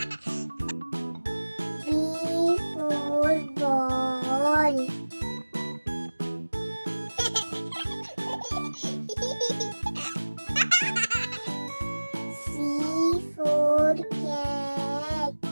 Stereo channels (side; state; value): both; inverted; correlation -1.00